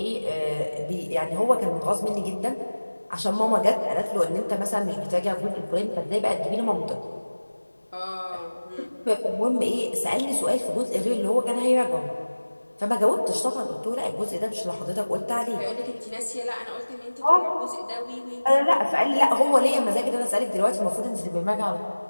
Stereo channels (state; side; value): inverted; both; correlation -1.00